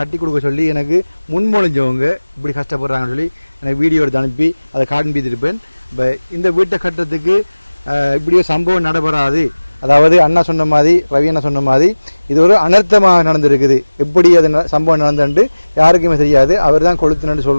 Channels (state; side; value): inverted; both; correlation -1.00